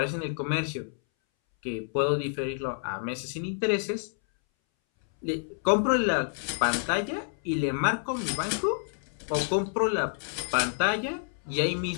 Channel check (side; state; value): right; silent; 59 dB below the other